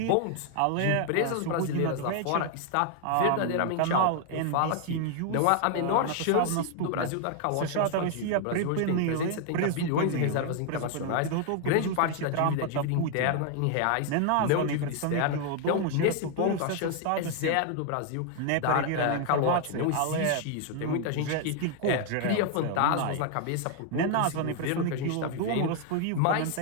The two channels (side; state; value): both; different; correlation 0.00